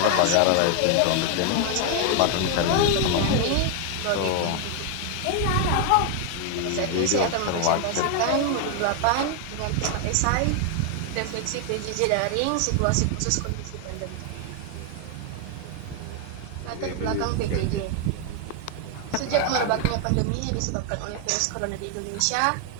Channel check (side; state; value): both; different; correlation 0.00